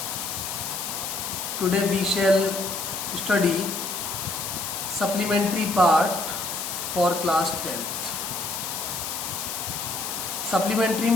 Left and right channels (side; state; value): left; noise; hiss, 4 dB below the sound